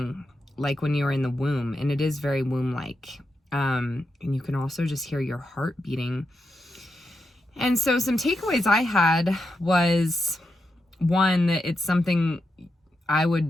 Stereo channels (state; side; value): normal; both; correlation 0.86